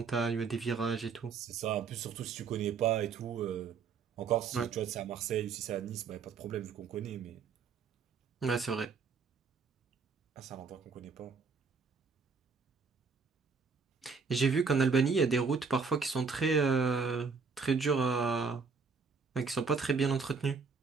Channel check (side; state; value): left; quieter; 5.2 dB